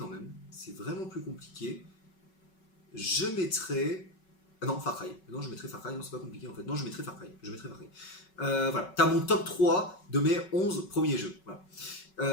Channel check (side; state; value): right; late; 5.4 ms